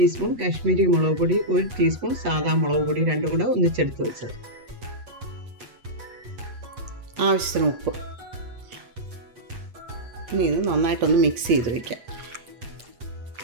കാശ്മീരി മുളക് പൊടി, 1 ടീസ്പൂൺ സാദാ മുളക് പൊടി, രണ്ടും കൂടെ ഒന്നിച്ചെടുത്ത് വെച്ചത്, ആവശ്യത്തിന് ഉപ്പ്. ഇനി ഇത് നന്നായിട്ടൊന്ന് മിക്സ് ചെയ്ത് വയ്ക്കാം.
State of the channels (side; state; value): left; late; 8.5 ms